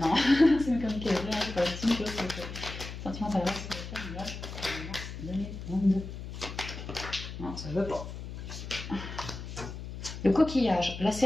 C'est une comique c'est pas la petite chose, c'est sentiment d'adresse, c'est le 22. Non, ça veut pas. Le coquillage, la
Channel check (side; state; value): left; noise; hum, 9 dB below the sound